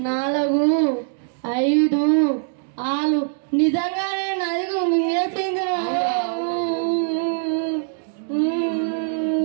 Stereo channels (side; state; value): left; silent; digital silence